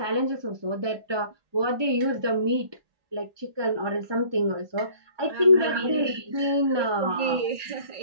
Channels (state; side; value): late; left; 1.2 ms